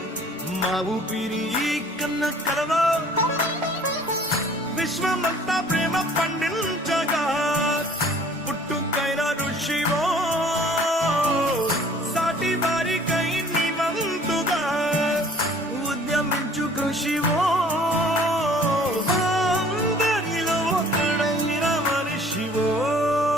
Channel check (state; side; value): normal; both; correlation 0.53